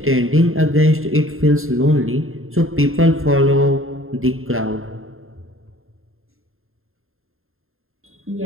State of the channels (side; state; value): left; late; 0.61 ms